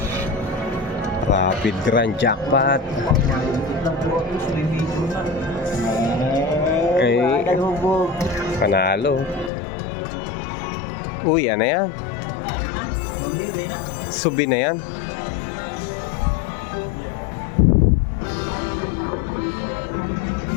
Rapid Grand Jackpot. Ay, panalo. Uy, ano yan? Subi na yan.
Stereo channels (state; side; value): drops out; right; at 9.5 s